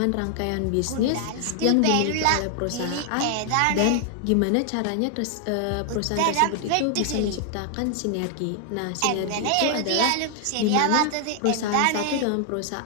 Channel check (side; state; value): both; different; correlation 0.00